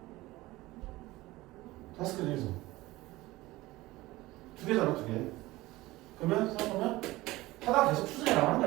5개 중에서 2개잖아, 2개. 그러면 생각하면 하다 계속 추정해 나가는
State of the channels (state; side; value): quieter; left; 19.1 dB